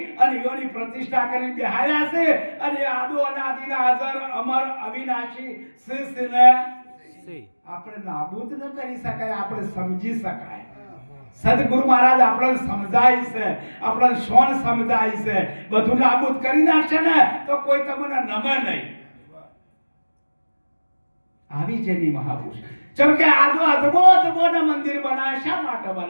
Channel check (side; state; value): both; inverted; correlation -1.00